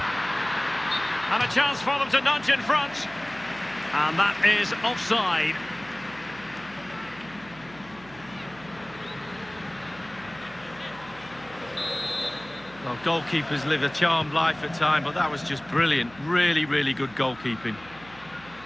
And a chance for them to nudge in front. And that is offside. Well, goalkeepers live a charmed life at times, but that was just brilliant. Really, really good goalkeeping.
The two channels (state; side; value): noise; right; hum, 22 dB below the sound